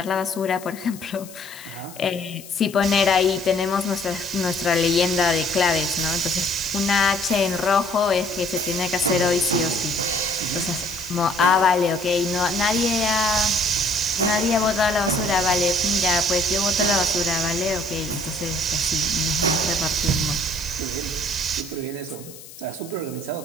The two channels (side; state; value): left; noise; hiss, 18 dB below the sound